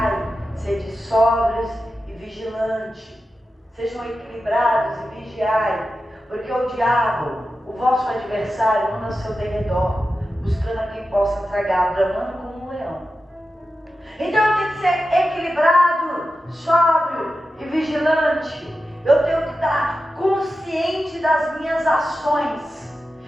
sede sóbrios e vigilantes. Sejam equilibrados e vigiai, porque o diabo, o vosso adversário, anda ao seu derredor, buscando a quem possa tragar, bramando como um leão. Então eu tenho que ser equilibrado, sóbrio e vigilante. Eu tenho que estar consciente das minhas ações.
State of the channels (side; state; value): both; normal; correlation 0.92